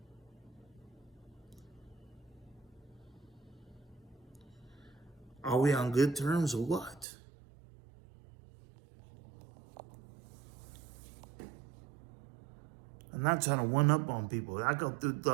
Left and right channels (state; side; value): drops out; left; at 7.1 s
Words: Are we on good terms or what? I'm not trying to one up on people. I go through